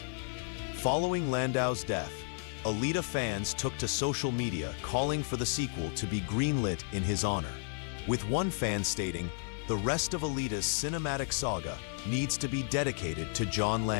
Following Landau's death, Alita fans took to social media calling for the sequel to be greenlit in his honor, with one fan stating, "The rest of Alita's cinematic saga needs to be dedicated to John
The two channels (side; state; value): right; silent; 56 dB below the other